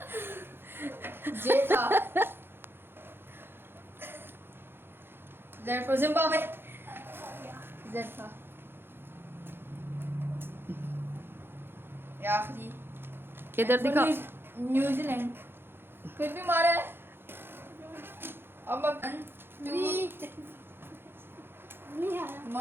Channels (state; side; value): late; left; 0.10 ms